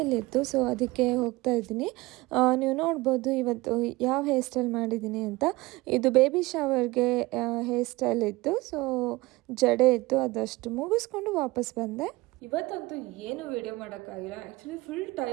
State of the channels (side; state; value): left; quieter; 21.3 dB